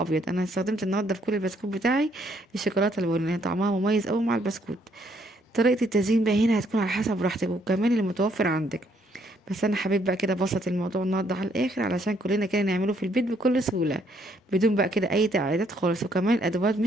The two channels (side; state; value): both; normal; correlation 0.69